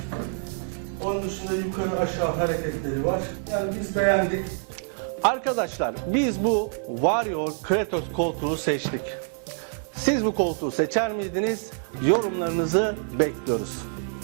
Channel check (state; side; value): silent; left; 61 dB below the other